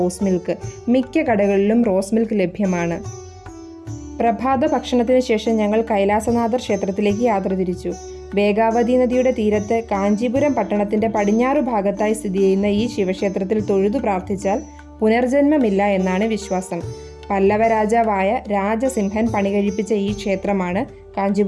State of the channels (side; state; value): both; identical; correlation 1.00